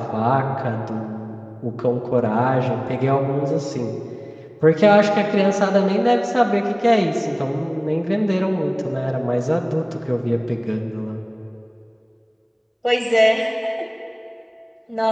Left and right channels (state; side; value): identical; both; correlation 1.00